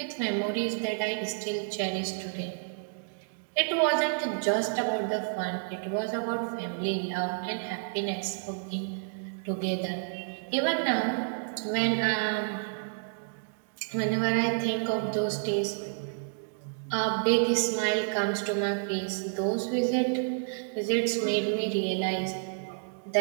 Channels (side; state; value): left; silent; digital silence